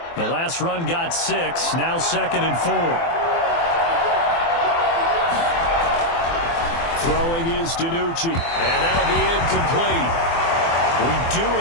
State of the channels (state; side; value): late; right; 24 ms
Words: The last run got 6, now 2nd and 4. Throwing is DiNucci, and that'll be incomplete. We do